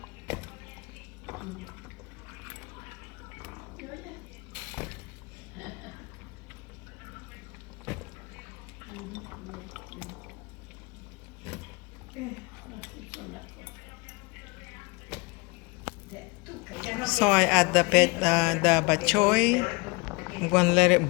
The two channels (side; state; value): right; quieter; 27.6 dB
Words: So I add the bok choy. I'm gonna let it